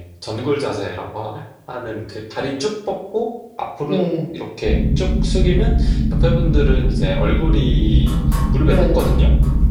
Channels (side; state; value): both; identical; correlation 1.00